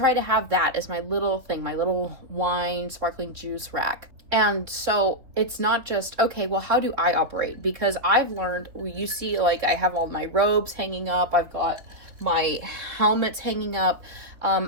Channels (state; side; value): late; left; 3.8 ms